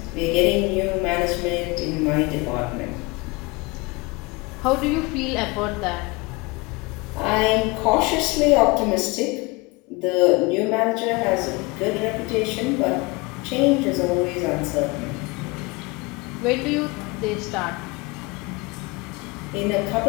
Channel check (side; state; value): right; quieter; 25.6 dB